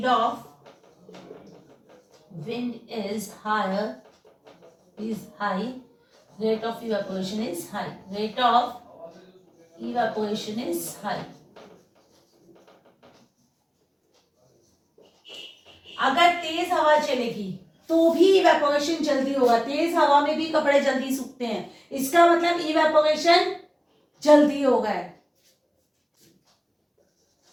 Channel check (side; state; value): both; identical; correlation 1.00